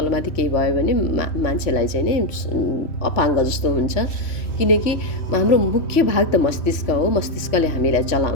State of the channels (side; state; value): right; late; 3.1 ms